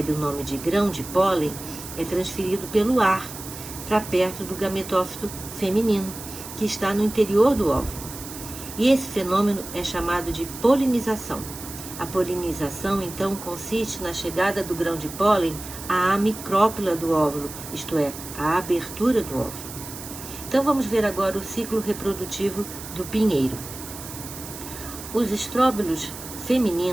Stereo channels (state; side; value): noise; right; hiss, 12 dB below the sound